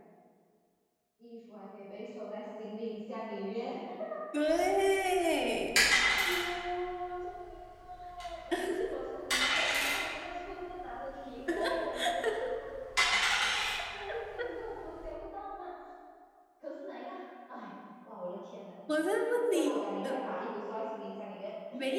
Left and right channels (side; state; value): both; identical; correlation 1.00